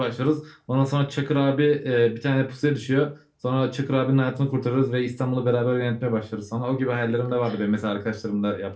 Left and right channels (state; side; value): identical; both; correlation 1.00